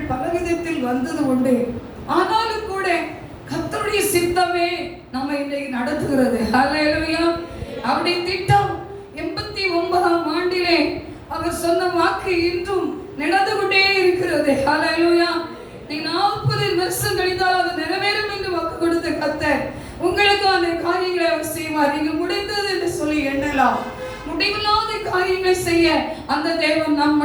பலவிதத்தில் வந்தது உண்டு. ஆனாலும் கூட கர்த்தருடைய சித்தமே நம்மை இன்றைக்கு நடத்துகிறது. அல்லேலூயா. அவருடைய திட்டம் 89ஆம் ஆண்டிலே அவர் சொன்ன வாக்கு இன்றும் நடந்து கொண்டே இருக்கிறது. ஹல்லேலூயா. நீ 40 வருஷம் கழித்தால் அது நிறைவேறும் என்று வாக்கு கொடுத்த கர்த்தர் உங்களுக்கு அந்த காரியங்களை அவர் செய்வார். நீங்க முடிந்தது என்று சொல்லி எண்ணலாம். முடிவில்லாத காரியங்களை செய்ய அந்த தேவன் நம்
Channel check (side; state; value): both; identical; correlation 1.00